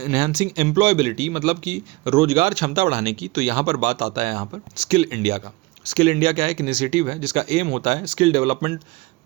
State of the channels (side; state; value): left; quieter; 22.3 dB